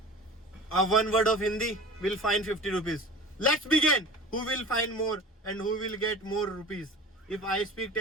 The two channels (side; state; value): both; normal; correlation 0.39